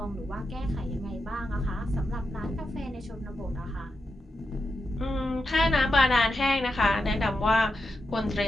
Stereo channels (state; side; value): normal; both; correlation 0.88